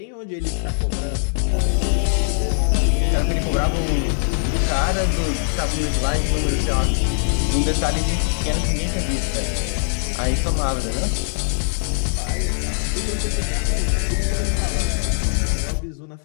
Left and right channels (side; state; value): right; silent; 65 dB below the other